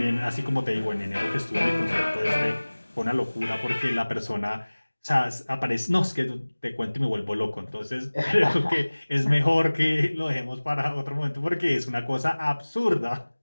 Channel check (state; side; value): inverted; both; correlation -1.00